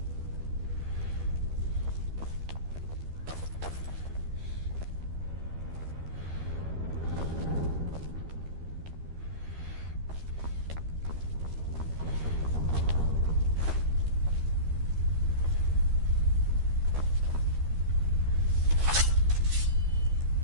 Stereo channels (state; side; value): late; left; 13 ms